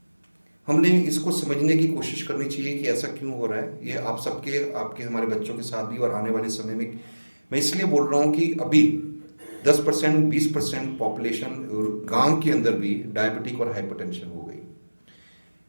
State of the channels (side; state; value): both; inverted; correlation -1.00